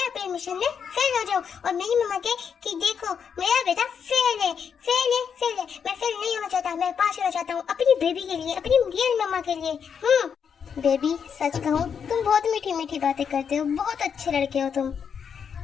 अपने मिशन में फेल हो जाऊँ और मेरी मम्मा के कि देखो मेरा बेटा फेल है, फेल है, फेल है। मैं फेल नहीं होना चाहता, मैं पास होना चाहता हूँ अपनी बेबी के लिए, अपनी रियल मम्मा के लिए। बेबी सच कहूँ तुम बहुत मीठी मीठी बातें करते हो, बहुत अच्छे लड़के हो तुम।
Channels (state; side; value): quieter; right; 7.1 dB